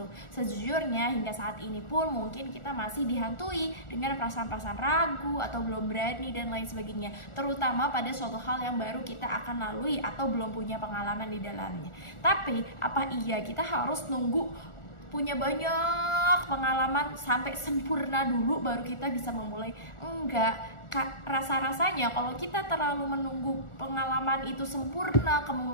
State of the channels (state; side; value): late; right; 1.4 ms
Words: Sejujurnya hingga saat ini pun mungkin kita masih dihantui dengan perasaan-perasaan ragu atau belum berani dan lain sebagainya, terutama pada suatu hal yang baru kita akan lalui atau belum punya pengalaman di dalamnya. Tapi apa iya kita harus nunggu punya banyak pengalaman sampai sempurna dulu baru kita bisa memulai? Enggak. Rasa-rasanya kalau kita terlalu menunggu pengalaman itu sempurna,